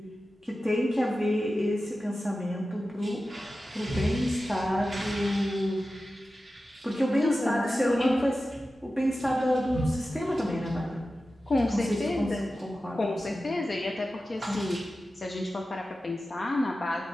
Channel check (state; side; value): normal; both; correlation 0.94